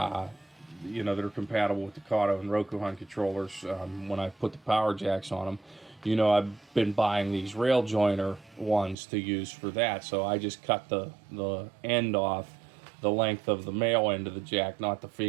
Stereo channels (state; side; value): drops out; left; at 9.0 s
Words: know, that are compatible with the Kato and Rokuhan controllers. When I put the power jacks on them, you know, I've been buying these rail joiner ones to use for that. So I just cut the end off the length of the male end of the jack, not the